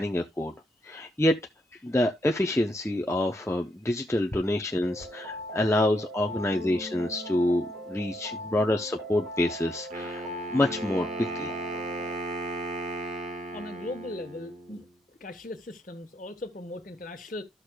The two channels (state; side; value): normal; both; correlation 0.77